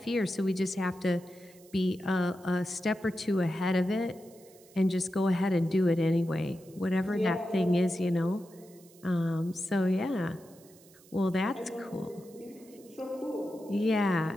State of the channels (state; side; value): noise; right; hiss, 25 dB below the sound